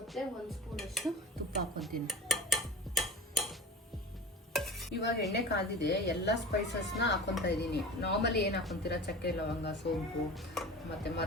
1 ಸ್ಪೂನಷ್ಟು ತುಪ್ಪ ಹಾಕೊತೀನಿ. ಇವಾಗ ಎಣ್ಣೆ ಕಾದಿದೆ, ಎಲ್ಲ ಸ್ಪೈಸಸ್ನ ಹಾಕೊತಾ ಇದ್ದೀನಿ. ನಾರ್ಮಲಿ ಏನು ಹಾಕೊತೀರಾ, ಚಕ್ಕೆ, ಲವಂಗ, ಸೋಂಪು ಮತ್ತು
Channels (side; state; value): both; normal; correlation 0.34